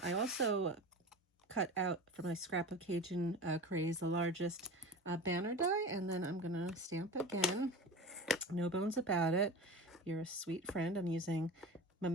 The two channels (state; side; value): normal; both; correlation 0.31